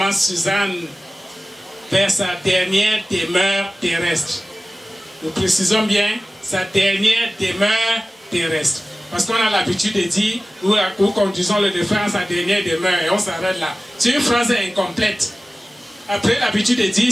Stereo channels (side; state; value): both; normal; correlation 0.97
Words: Suzanne vers sa dernière demeure terrestre. Nous précisons bien sa dernière demeure terrestre. Parce qu'on a l'habitude de dire, nous conduisons le défunt à sa dernière demeure et on s'arrête là. C'est une phrase incomplète. Après l'habitude de dire